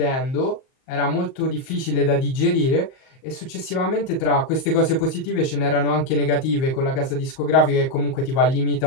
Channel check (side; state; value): right; late; 38 ms